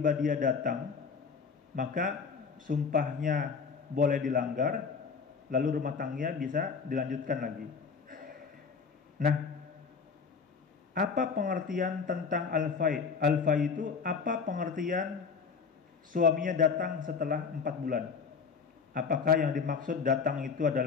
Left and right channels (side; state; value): right; quieter; 5.6 dB